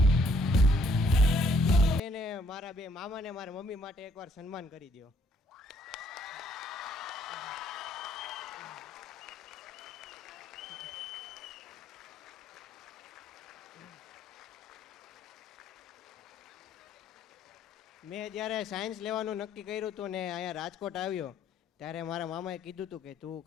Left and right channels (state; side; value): normal; both; correlation 0.66